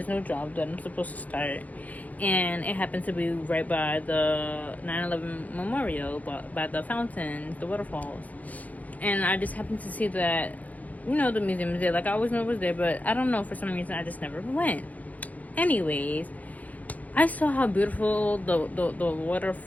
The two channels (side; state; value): right; late; 0.076 ms